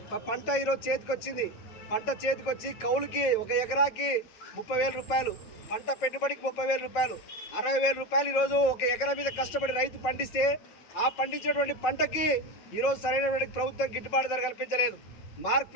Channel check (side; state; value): right; late; 9.1 ms